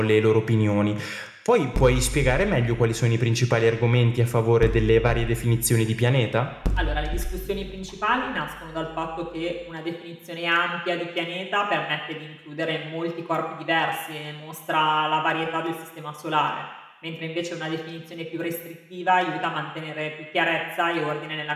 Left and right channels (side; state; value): both; identical; correlation 1.00